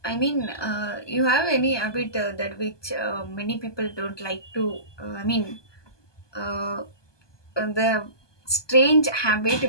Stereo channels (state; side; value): late; right; 1.2 ms